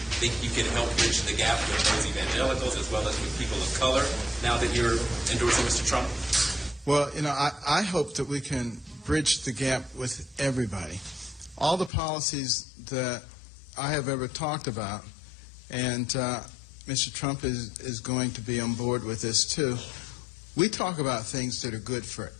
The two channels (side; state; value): right; drops out; at 11.9 s